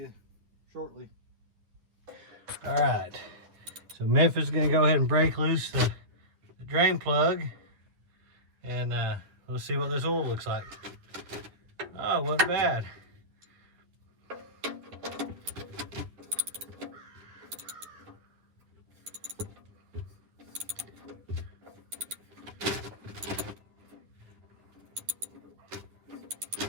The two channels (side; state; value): left; late; 9.9 ms